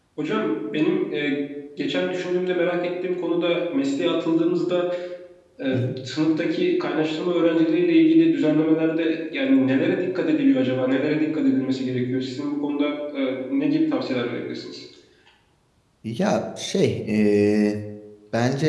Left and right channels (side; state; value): both; identical; correlation 1.00